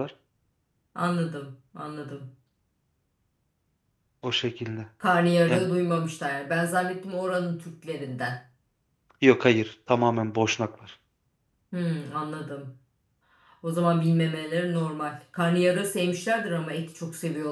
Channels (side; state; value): both; identical; correlation 1.00